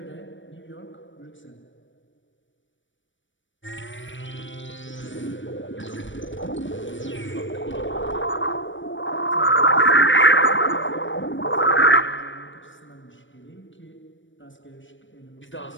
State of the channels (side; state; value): right; late; 0.55 ms